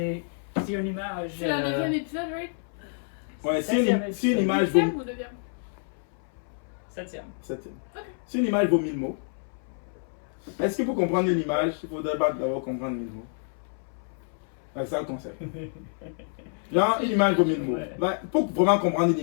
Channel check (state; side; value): silent; right; 59 dB below the other